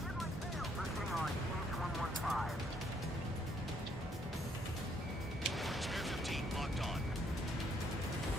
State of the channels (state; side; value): normal; both; correlation 0.69